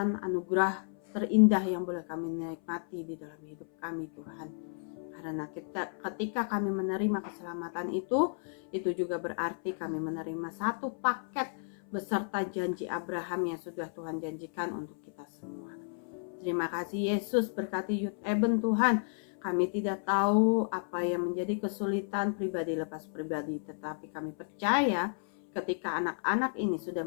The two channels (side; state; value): right; silent; 56 dB below the other